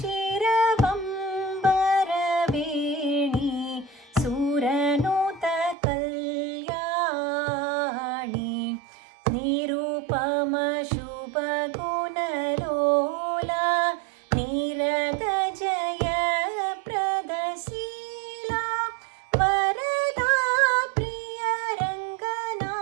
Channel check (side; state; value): left; drops out; at 5.8 s